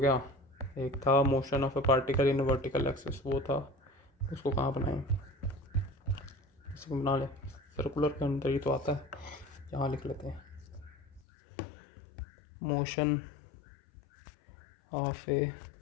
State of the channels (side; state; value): right; drops out; at 11.2 s